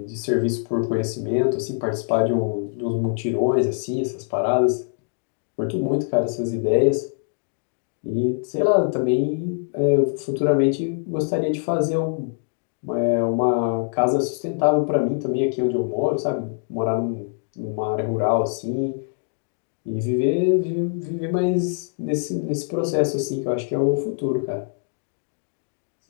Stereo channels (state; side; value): silent; right; 63 dB below the other